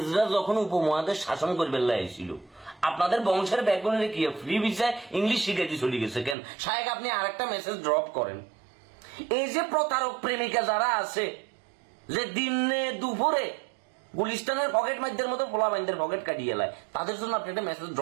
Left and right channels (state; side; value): drops out; left; at 6.4 s